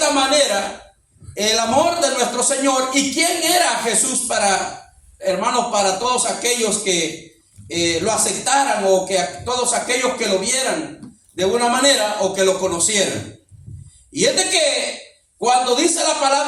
manera el amor de nuestro Señor y quién era Jesús para, hermanos, para todos aquellos que lo aceptaran, o que todos aquellos que lo vieran de una manera o que lo conocieran. Y es de que cuando dice la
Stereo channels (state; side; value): identical; both; correlation 1.00